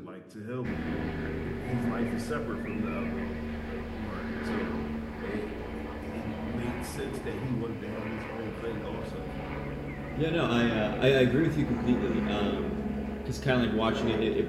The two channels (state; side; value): identical; both; correlation 1.00